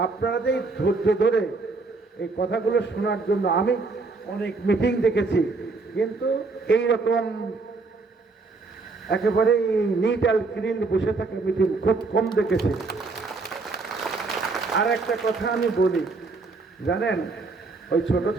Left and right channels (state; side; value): quieter; left; 3.9 dB